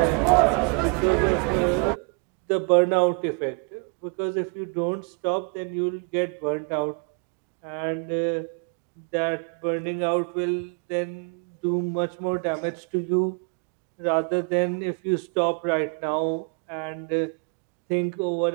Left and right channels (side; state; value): left; quieter; 34.9 dB